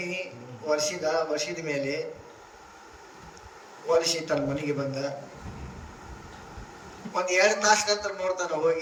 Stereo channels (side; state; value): both; identical; correlation 1.00